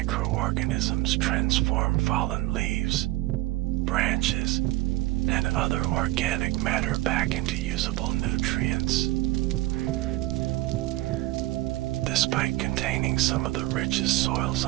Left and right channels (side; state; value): left; quieter; 18.4 dB